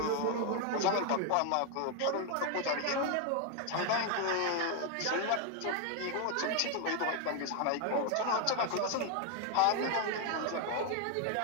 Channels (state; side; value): different; both; correlation 0.01